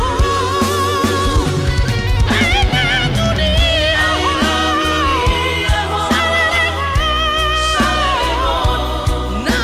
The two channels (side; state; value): both; identical; correlation 1.00